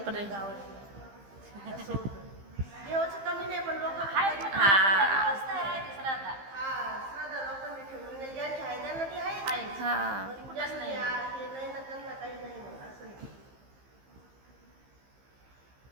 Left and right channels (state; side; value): late; left; 15 ms